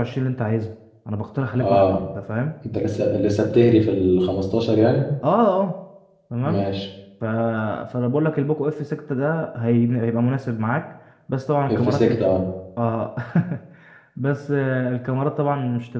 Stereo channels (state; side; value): identical; both; correlation 1.00